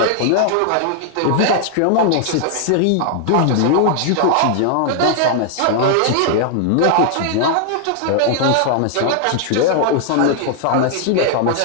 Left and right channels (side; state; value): both; different; correlation 0.00